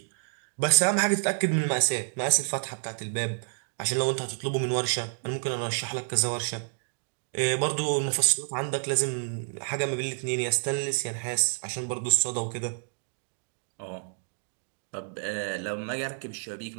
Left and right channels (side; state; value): left; silent; digital silence